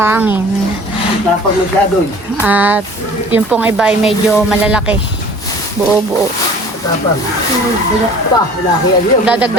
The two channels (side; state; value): both; normal; correlation 0.47